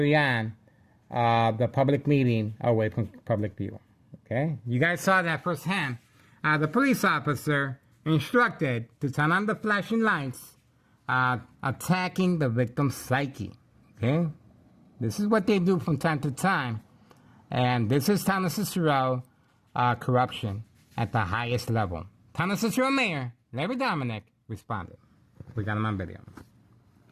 on the public meeting away from public view. Okay? You guys saw that firsthand. The police officer instructed to turn on the flashing lights, attacking the victim's psyche. Okay? This is what they do from time to time. And this is Town of Cicero corruption at the highest level. Town of Cicero Mayor, Larry Dominic, responded. We got him on video.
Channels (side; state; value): both; identical; correlation 1.00